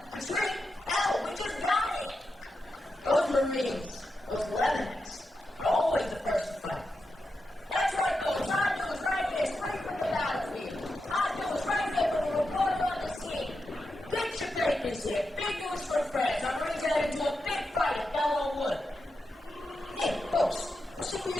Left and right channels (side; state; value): both; normal; correlation 0.88